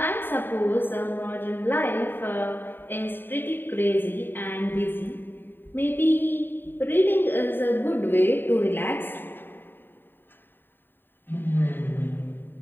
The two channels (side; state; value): right; late; 0.095 ms